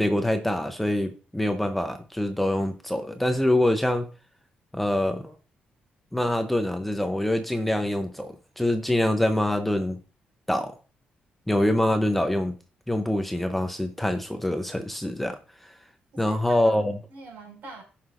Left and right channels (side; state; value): both; normal; correlation 0.95